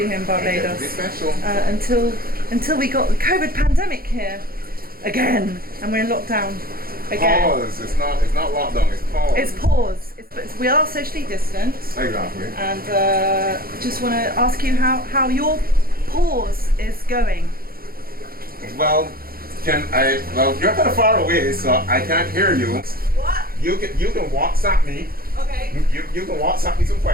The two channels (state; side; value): late; left; 0.43 ms